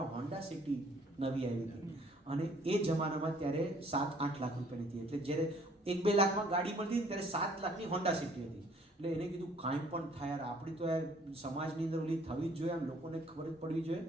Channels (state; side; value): normal; both; correlation 0.59